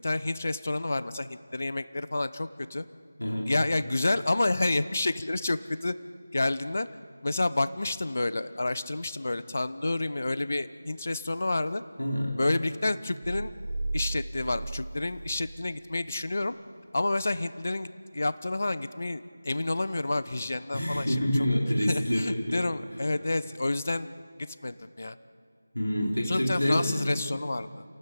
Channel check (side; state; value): both; inverted; correlation -0.96